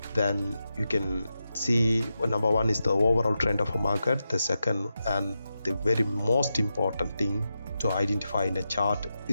then you can see, number one is the overall trend of a market. The second and the very most important thing to identify in a chart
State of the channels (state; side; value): inverted; both; correlation -0.89